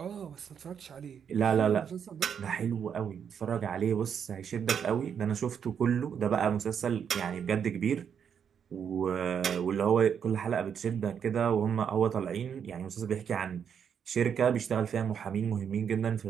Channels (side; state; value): left; quieter; 7.7 dB